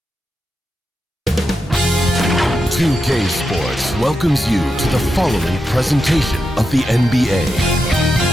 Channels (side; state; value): both; normal; correlation 0.87